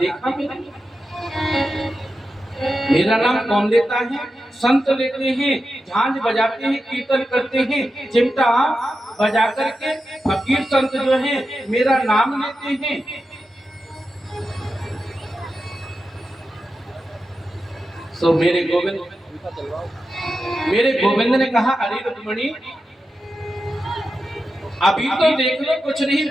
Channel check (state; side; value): normal; both; correlation 0.90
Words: मेरा नाम कौन लेता है? संत लेते हैं, झांझ बजाते हैं, कीर्तन करते हैं, चिमटा बजा करके फकीर संत जो हैं मेरा नाम लेते हैं। सो मेरे गोविंद ने कहा अरे रुक्मणी अभी तो देख लो कुछ नहीं